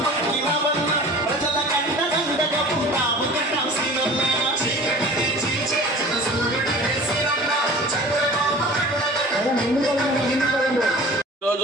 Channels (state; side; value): normal; both; correlation 0.42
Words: పట్టినవన్నా ప్రజల కంట దండగా ఉంటాము కన్నా సీనన్నా చీకటినే చీల్చే జన సూర్యుడు వేసినన్నా చంద్రబాబు